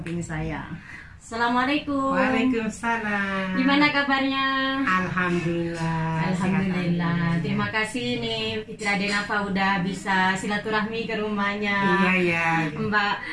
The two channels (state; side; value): identical; both; correlation 1.00